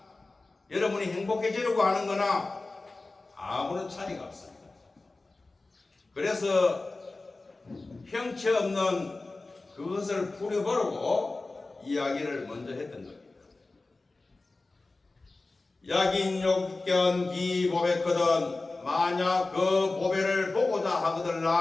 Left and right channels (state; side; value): quieter; right; 3.3 dB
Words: 여러분이 행복해지려고 하는 거나 아무런 차이가 없습니다. 그래서 형체 없는 그것을 풀어보려고 이야기를 먼저 했던 겁니다. 약인 욕견 기 보배거든 만약 그 보배를 보고자